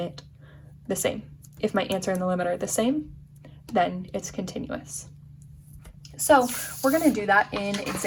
the same? If my answer and the limit are the same, then it's continuous. So we're going to do that in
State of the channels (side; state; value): both; identical; correlation 1.00